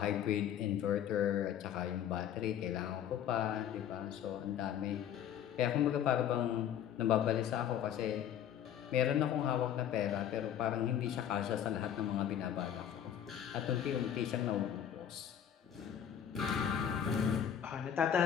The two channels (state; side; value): quieter; right; 9.7 dB